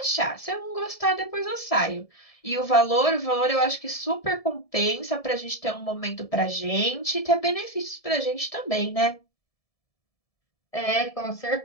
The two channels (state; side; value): late; right; 1.7 ms